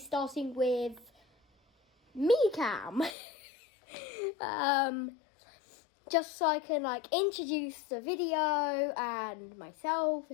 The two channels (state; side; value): drops out; right; at 3.2 s